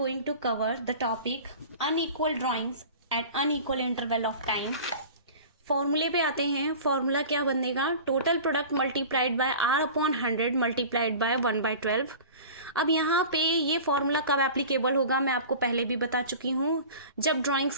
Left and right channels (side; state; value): both; inverted; correlation -0.38